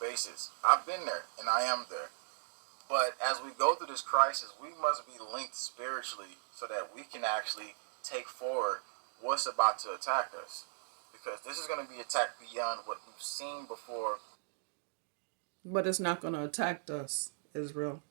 I've been there, and I am there. But as we go through this crisis, we must be linked spiritually so that we can actually take forward what's about to attack us. Because this is going to be attacked beyond what we've seen before. But it's not going to attack us, Israel.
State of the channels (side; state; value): left; silent; digital silence